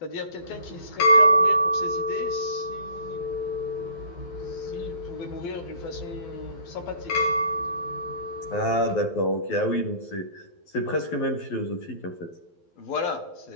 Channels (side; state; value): right; late; 12 ms